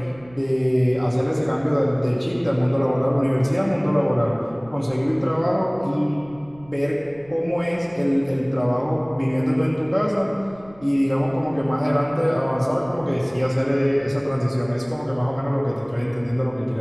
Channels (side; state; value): right; noise; rumble, 26 dB below the sound